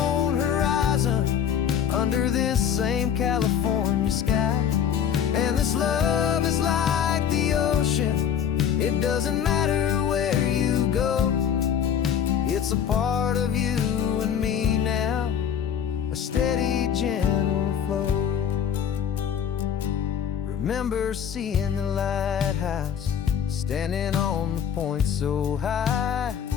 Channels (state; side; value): quieter; right; 8.5 dB